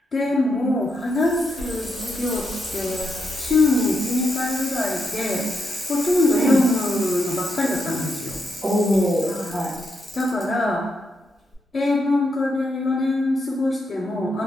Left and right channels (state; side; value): normal; both; correlation 0.82